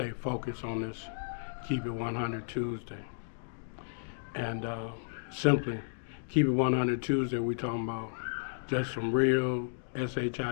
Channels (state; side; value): silent; right; digital silence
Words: focused on this Keep It 100 Tuesday. And simply, Keep It 100 Tuesday, we talking about just some real